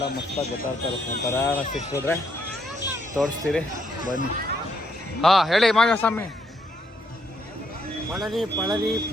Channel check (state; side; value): normal; both; correlation 0.74